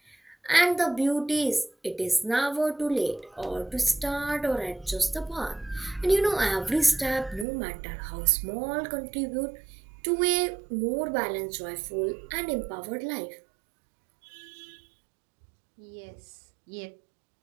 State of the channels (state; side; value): drops out; left; at 7.5 s